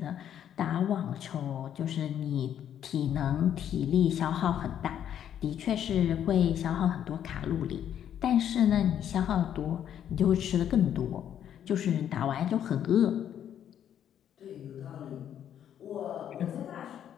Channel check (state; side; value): quieter; right; 9.9 dB